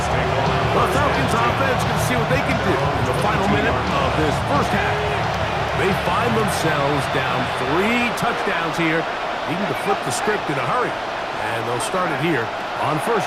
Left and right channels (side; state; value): both; identical; correlation 1.00